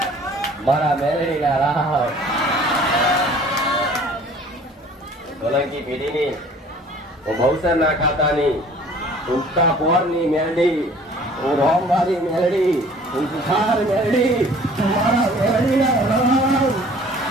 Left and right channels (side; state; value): both; normal; correlation 0.51